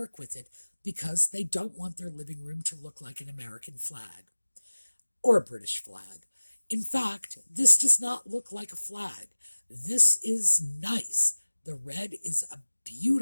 with it because they don't want their living room to look like an American flag or a British flag. In fact, this does not look like a flag. This is nice. The red is a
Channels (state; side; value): inverted; both; correlation -1.00